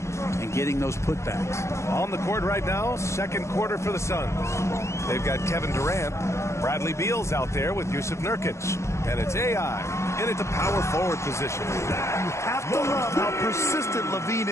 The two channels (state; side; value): late; right; 0.14 ms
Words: and getting those putbacks. On the court right now, second quarter for the Suns. They've got Kevin Durant. Bradley Beal's out there with Yusuf Nurkic. And it's AI in at the power forward position. You have to love how persistent Levine